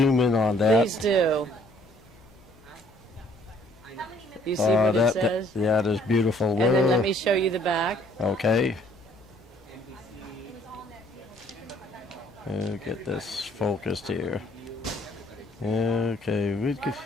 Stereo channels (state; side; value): noise; left; hum, 27 dB below the sound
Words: in on that. Please do. You see what it says? Yeah, it is beautiful. And then let me show you the back. Okay. Get this focused here. Okay,